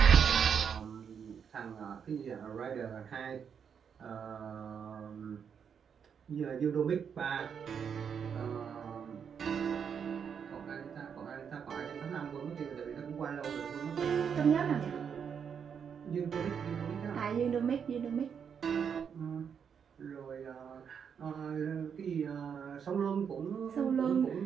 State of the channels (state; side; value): quieter; left; 7.2 dB